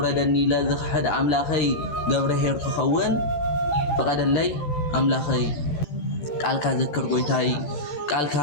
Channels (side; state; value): right; late; 14 ms